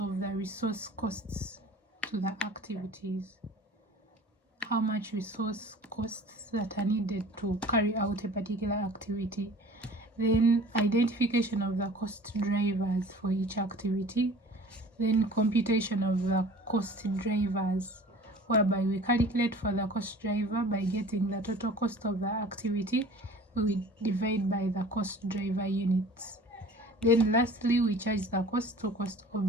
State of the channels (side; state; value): both; normal; correlation 0.45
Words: the resource costs to the activities. How much resource costs that are needed to carry out a particular activity. Then identification of the cost drivers for each activity. Then computation of the cost drivers, whereby we calculate for the cost driver by getting the total cost of the activity. We divide by the cost driver units. Then lastly, we charge the cost to cost